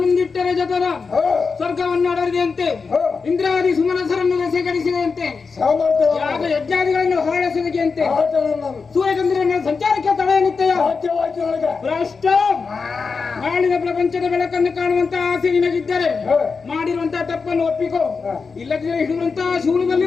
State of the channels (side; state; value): right; quieter; 4.9 dB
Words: ಜತನ ಸ್ವರ್ಗವನ್ನು ಅಡರಿದೆಯಂತೆ ಇಂದ್ರಾದಿ ಸುಮನಸರನ್ನು ಸೇಕರಿಸಿದಂತೆ ಯಾಗ ಯಜ್ಞಾದಿಗಳನ್ನು ಹೊರಡಿಸಿದಂತೆ ಸೂರ್ಯಚಂದ್ರನ ಸಂಚಾರಕ್ಕೆ ತಡೆ ನಿತ್ಯ ಭ್ರಷ್ಟ ನಾಳಿನ ಪ್ರಪಂಚದ ಬೆಳಕನ್ನು ಕಾಣುವಂತ ಆಸೆ ನಿನಗಿದ್ದರೆ ಮಾಡಿರುವಂತಹ ತಪ್ಪನ್ನು ಒಪ್ಪಿಕೋ ಇಲ್ಲದಿದ್ದರೆ ಹಿಡಿಯುವಂತಹ